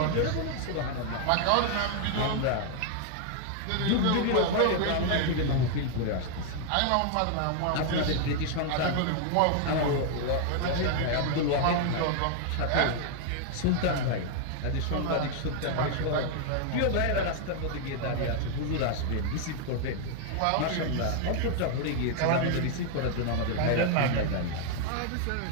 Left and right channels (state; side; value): different; both; correlation 0.00